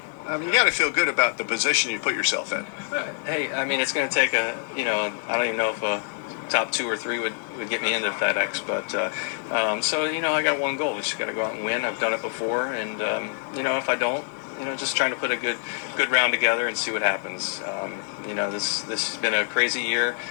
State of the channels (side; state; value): right; silent; 61 dB below the other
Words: got to feel good about the position you put yourself in. Hey, I mean, it's going to take I don't even know if a top 2 or 3 would get me into FedEx, but so I got one goal. We just got to go out and win. I've done it before, and if I don't, just trying to put a good round together and see what happens. This has been a crazy year.